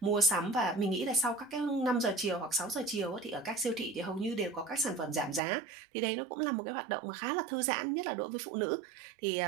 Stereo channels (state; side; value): drops out; left; at 5.4 s